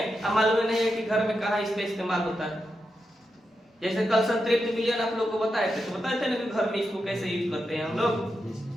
अब मालूम नहीं है कि घर में कहाँ इसका इस्तेमाल होता है। जैसे कल संतृप्त विलयन आप लोग को बताए थे, तो बताए थे ना कि घर में इसको कैसे यूज करते हैं हम लोग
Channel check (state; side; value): normal; both; correlation 0.87